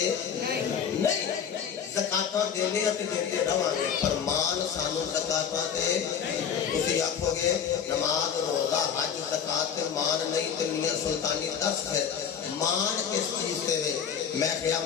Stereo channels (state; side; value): quieter; right; 7.7 dB